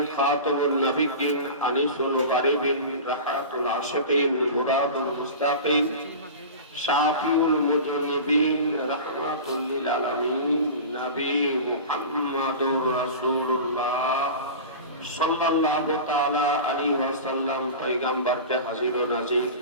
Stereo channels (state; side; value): inverted; both; correlation -0.31